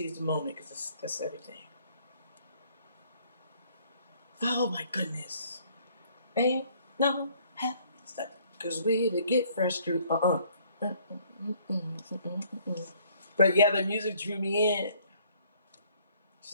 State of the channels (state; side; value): inverted; both; correlation -0.61